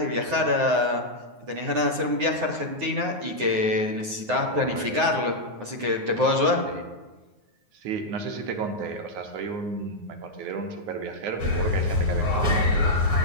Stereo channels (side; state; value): left; late; 9.6 ms